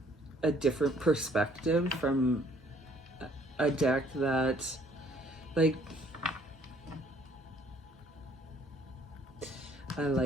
a different perspective from a deck that like I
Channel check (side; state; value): both; normal; correlation 0.61